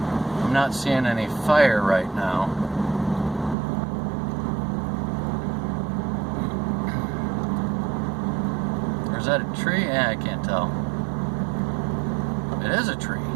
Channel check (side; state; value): left; drops out; at 3.6 s